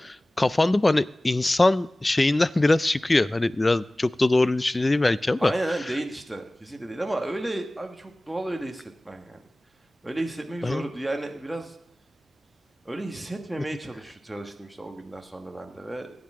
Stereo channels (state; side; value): normal; both; correlation 0.98